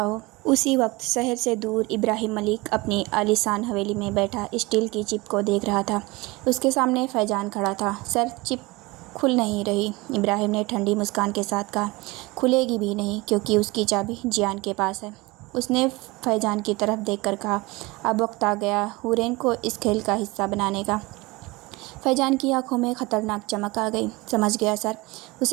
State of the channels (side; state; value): left; quieter; 23.1 dB